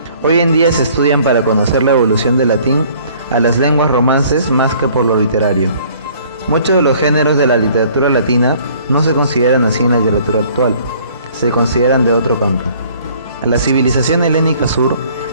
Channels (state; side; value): inverted; both; correlation -0.56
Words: Hoy en día se estudian para conocer la evolución del latín a las lenguas romances más que por lo literario. Muchos de los géneros de la literatura latina no se consideran así en la literatura actual, se consideran de otro campo. La civilización helénica sur